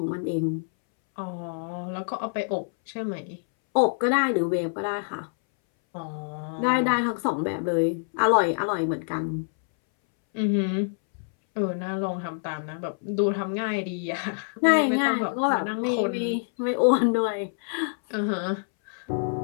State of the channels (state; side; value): silent; right; 61 dB below the other